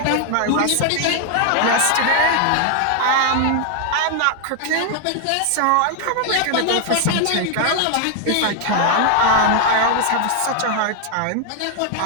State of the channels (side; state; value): both; different; correlation 0.00